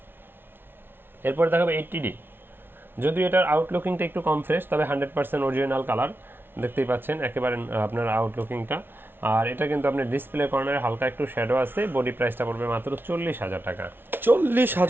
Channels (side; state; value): left; late; 0.11 ms